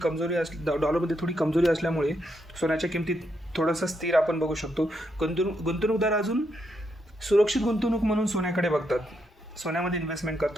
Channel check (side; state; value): both; normal; correlation 0.79